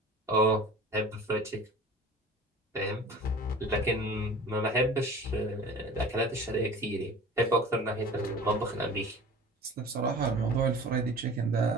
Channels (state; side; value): normal; both; correlation 0.42